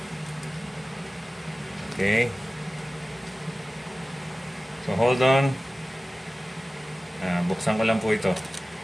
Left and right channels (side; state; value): both; normal; correlation 0.97